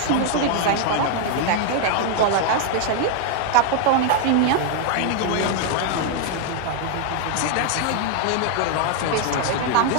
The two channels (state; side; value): different; both; correlation 0.00